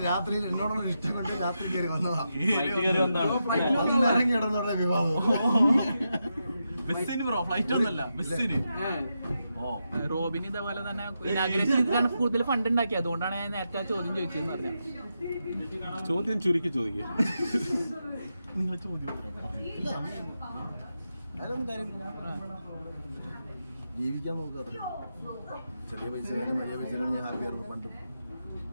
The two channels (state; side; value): inverted; both; correlation -0.86